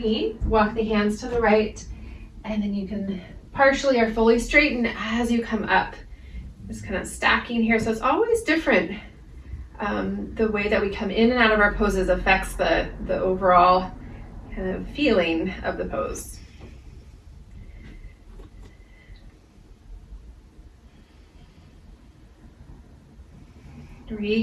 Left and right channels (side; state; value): both; identical; correlation 1.00